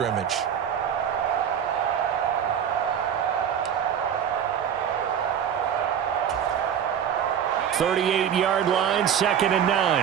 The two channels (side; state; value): left; quieter; 8.7 dB